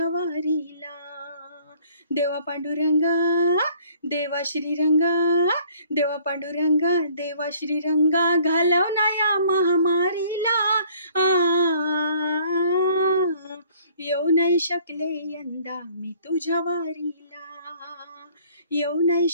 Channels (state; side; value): inverted; both; correlation -0.57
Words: वारीला. देवा पांडुरंगा, देवा श्रीरंगा, देवा पांडुरंगा, देवा श्रीरंगा, घालव ना या महामारीला. येऊ नाही शकले यंदा मी तुझ्या वारीला, येऊ नाही